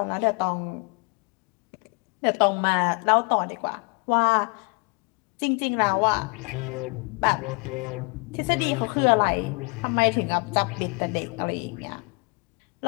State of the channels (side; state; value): right; quieter; 31.8 dB